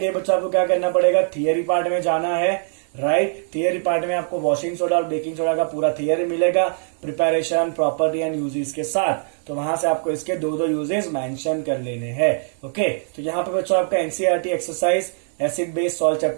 बच्चों आपको क्या करना पड़ेगा, थियरी पार्ट में जाना है, राइट। थियरी पार्ट में आपको वॉशिंग सोडा और बेकिंग सोडा का पूरा थियरी मिलेगा, प्रिपरेशन, प्रॉपर्टी एंड यूजेस के साथ। तो वहां से आपको इसके दो यूजेस मेंशन कर लेने हैं। ओके, तो यहाँ पे बच्चों आपका NCERT exercise acid base salt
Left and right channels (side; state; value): left; silent; 59 dB below the other